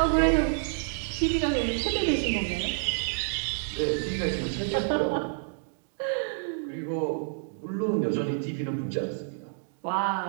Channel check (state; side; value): silent; left; digital silence